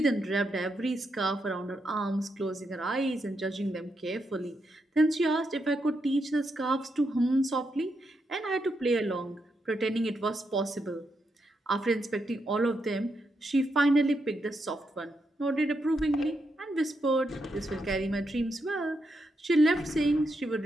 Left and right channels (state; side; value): normal; both; correlation 0.82